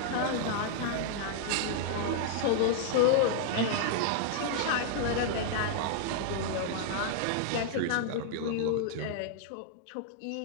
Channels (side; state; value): both; different; correlation -0.01